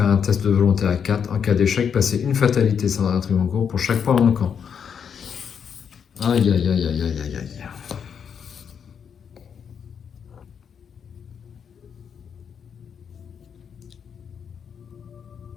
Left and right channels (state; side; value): quieter; right; 7.3 dB